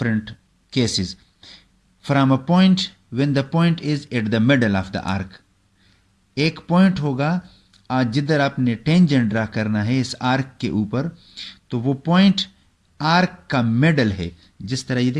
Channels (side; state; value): both; identical; correlation 1.00